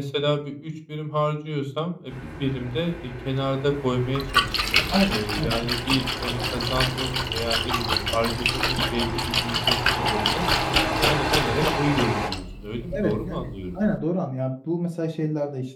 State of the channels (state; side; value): identical; both; correlation 1.00